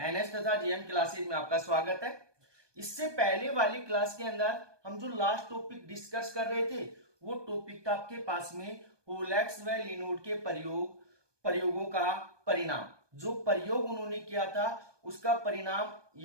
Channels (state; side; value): late; left; 1.2 ms